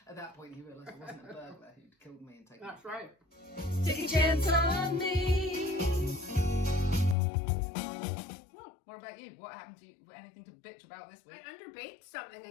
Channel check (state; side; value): drops out; right; at 7.2 s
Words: At that point, he realised it wasn't a burglar who'd killed me and taken That's me. right. Take a chance on me. What about you? What happened to you? Anything to bitch about this week? I underbaked something